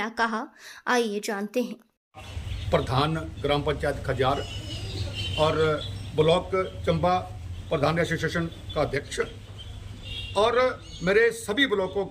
कहा, आइए जानते हैं। प्रधान ग्राम पंचायत खजार और ब्लॉक चंबा प्रधान एसोसिएशन का अध्यक्ष और मेरे सभी ब्लॉकों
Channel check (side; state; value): both; identical; correlation 1.00